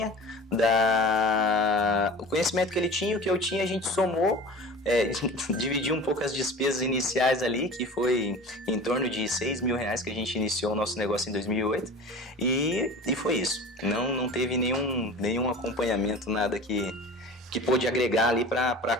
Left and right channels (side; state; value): both; normal; correlation 0.38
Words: e o que eu tinha, a gente somou, dividiu um pouco as despesas iniciais ali, que foi em torno de R$6.000 que a gente iniciou o nosso negócio em 2008, e foi isso. Não teve nenhum acompanhamento, nada que pôde agregar ali